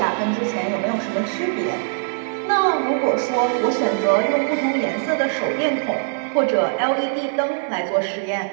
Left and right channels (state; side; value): silent; left; digital silence